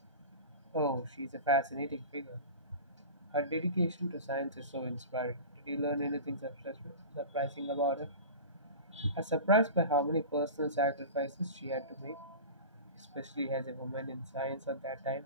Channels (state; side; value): inverted; both; correlation -0.32